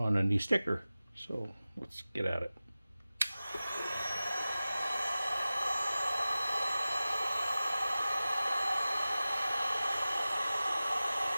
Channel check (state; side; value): inverted; both; correlation -0.97